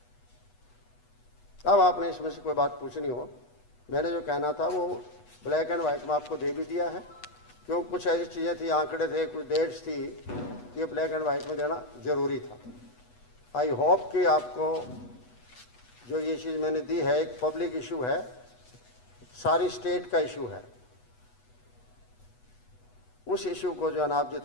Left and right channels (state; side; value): late; right; 8.2 ms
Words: अब आपने इसमें से कोई बात पूछनी हो, मैंने जो कहना था वो ब्लैक एंड वाइट में आपको दे भी दिया है, क्यों कुछ ऐसी चीज़ें थी, आंकड़े थे, कुछ डेट्स थी, ये ब्लैक एंड वाइट में देना जरूरी था। आई होप कि आपको जो ये चीज़ मैंने दी है एक पब्लिक इशू है, सारी स्टेट का इशू है, उस इशू को जो है ना आप